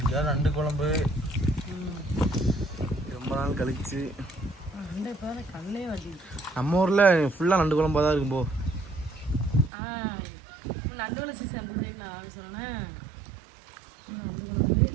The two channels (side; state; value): left; drops out; at 9.7 s